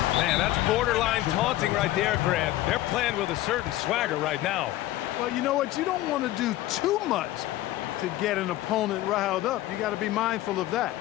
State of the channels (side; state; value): right; quieter; 15.5 dB